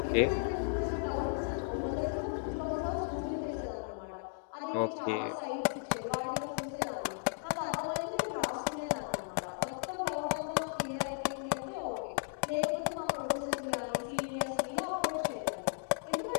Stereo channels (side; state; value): right; silent; digital silence